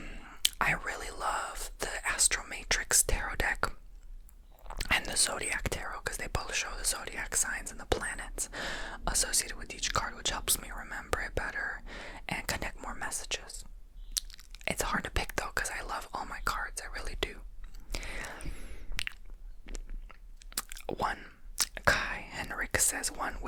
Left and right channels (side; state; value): both; identical; correlation 1.00